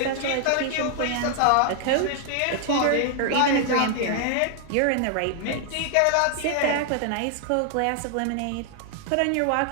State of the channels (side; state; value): both; different; correlation 0.00